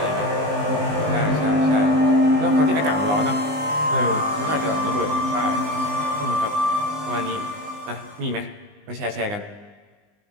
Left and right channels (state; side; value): late; left; 20 ms